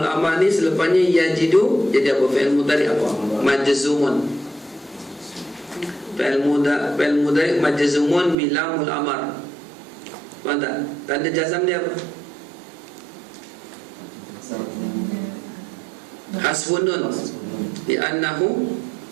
amar ni selepasnya yajidu, jadi apa? Fi'il mudhari apa? Majzumun. Fi'il mudhari majzumun bi lamul amar. Faham tak? Tanda jazam dia apa? Hasfun nun li'annahu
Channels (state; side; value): drops out; left; at 8.3 s